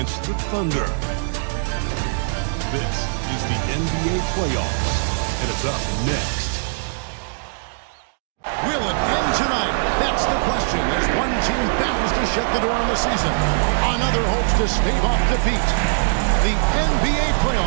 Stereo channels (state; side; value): silent; left; digital silence